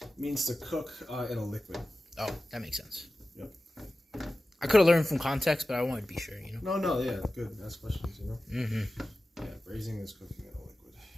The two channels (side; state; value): both; normal; correlation 0.95